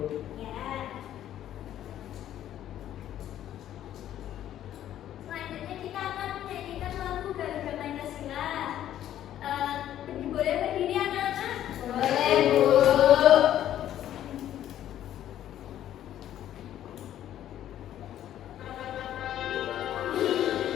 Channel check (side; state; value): right; quieter; 11.7 dB